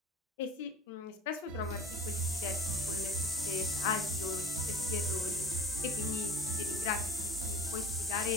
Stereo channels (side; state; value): both; normal; correlation 0.44